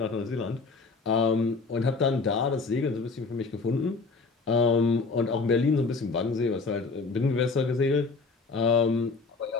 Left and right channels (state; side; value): quieter; right; 4.2 dB